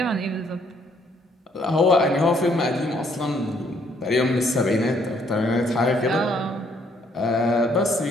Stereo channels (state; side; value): normal; both; correlation 0.67